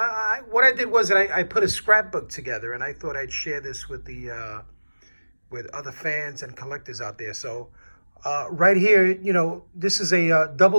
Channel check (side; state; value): both; inverted; correlation -1.00